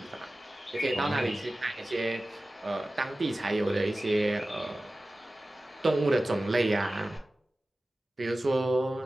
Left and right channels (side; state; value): both; normal; correlation 0.96